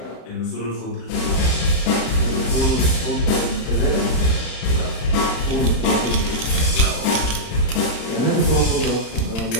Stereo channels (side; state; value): right; late; 35 ms